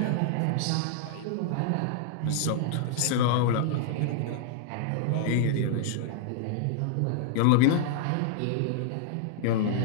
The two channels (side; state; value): both; different; correlation -0.01